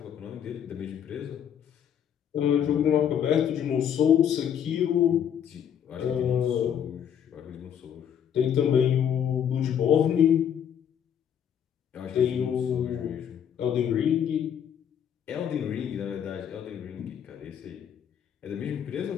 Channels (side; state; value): right; quieter; 8.9 dB